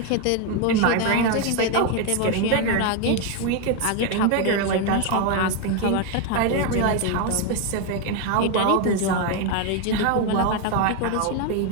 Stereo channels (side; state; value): both; different; correlation 0.01